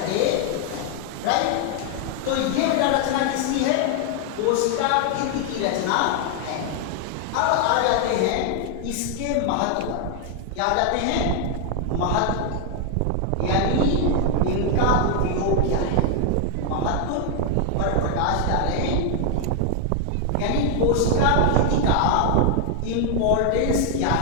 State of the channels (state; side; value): different; both; correlation 0.00